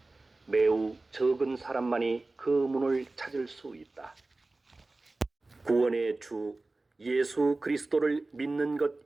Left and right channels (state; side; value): quieter; left; 3.2 dB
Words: 매우 적은 사람만이 그 문을 찾을 수 있다. 구원의 주 예수 그리스도를 믿는 것